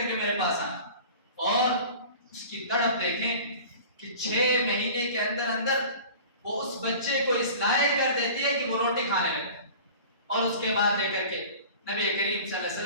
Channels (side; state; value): both; inverted; correlation -0.40